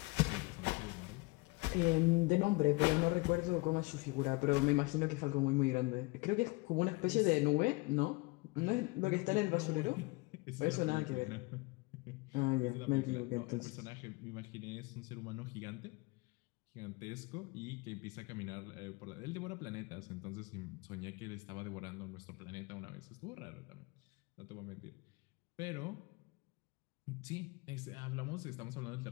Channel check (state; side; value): quieter; right; 25.3 dB